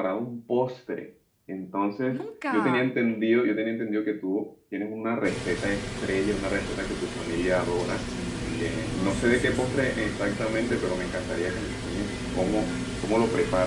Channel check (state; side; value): identical; both; correlation 1.00